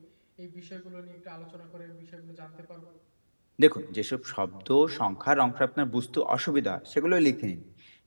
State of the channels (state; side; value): inverted; both; correlation -1.00